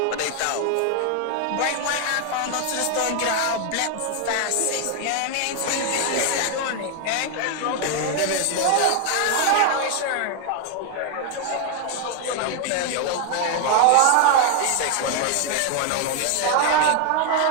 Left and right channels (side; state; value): both; different; correlation 0.01